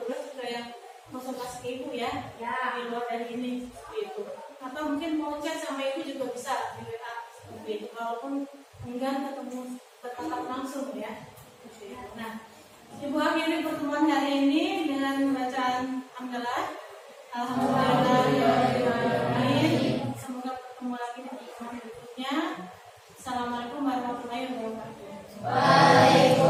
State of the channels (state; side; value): identical; both; correlation 1.00